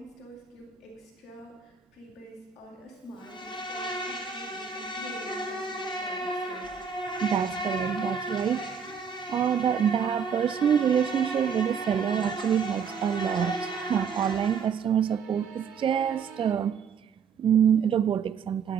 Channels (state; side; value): quieter; left; 6.9 dB